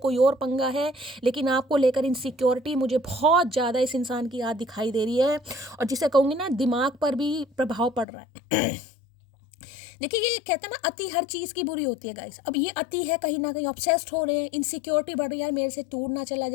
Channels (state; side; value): drops out; right; at 8.1 s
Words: और पंगा है, लेकिन आपको लेकर इनसिक्योरिटी मुझे बहुत ज़्यादा इस इंसान की याद दिखाई दे रही है। और जिसे कहूँगी ना, दिमाग पर भी प्रभाव पड़ रहा है। देखिए, ये कहते हैं ना, अति हर चीज़ की बुरी होती है गाइस। अब ये अति है, कहीं ना कहीं ऑब्सेस्ड हो रहे हैं, इनसिक्योरिटी बढ़ रही है, यार मेरे से टूट ना चला